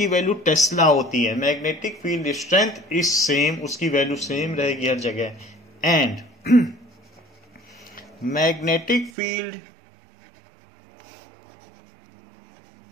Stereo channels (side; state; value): left; drops out; at 9.1 s